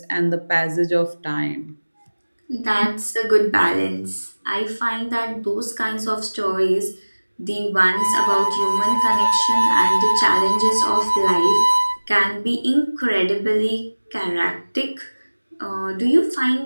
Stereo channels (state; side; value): inverted; both; correlation -1.00